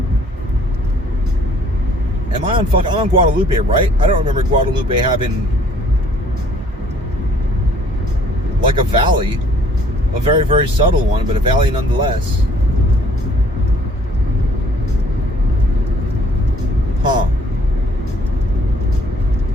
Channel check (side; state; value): both; normal; correlation 0.59